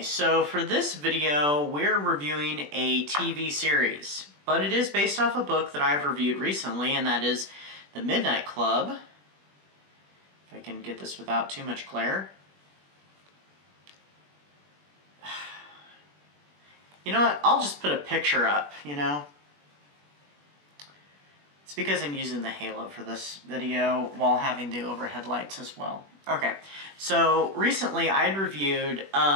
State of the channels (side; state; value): left; late; 21 ms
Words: so for this video, we're reviewing a TV series. But it is based off a book that I've reviewed recently, and that is The Midnight Club. If I can get this without too much glare. You know what? I'll just put a picture up, you know? It's because I'm using the halo for this video while having the overhead lights as well. Okay, so recently I'd reviewed